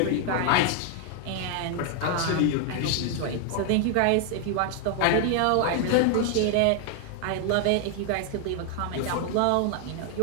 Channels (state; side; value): different; both; correlation 0.00